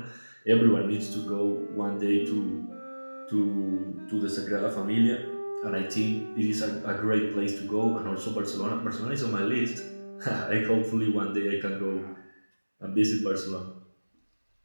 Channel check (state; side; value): inverted; both; correlation -1.00